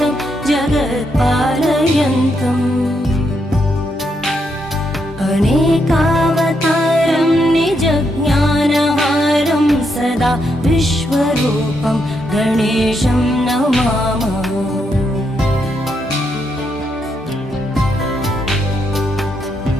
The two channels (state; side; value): normal; both; correlation 0.79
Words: जगत्पालयन्तम् अनेकावतारं निजज्ञानहारं सदा विश्वरूपं गणेशं नमामः